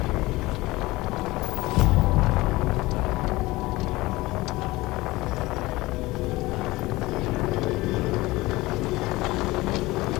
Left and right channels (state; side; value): quieter; right; 20.2 dB